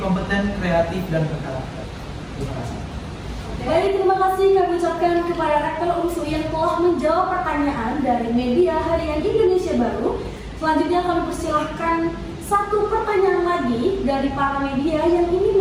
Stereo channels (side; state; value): both; identical; correlation 1.00